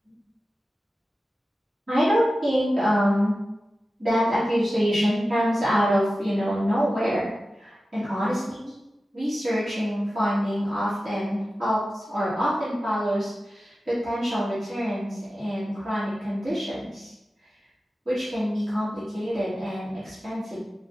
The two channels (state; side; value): normal; both; correlation 0.94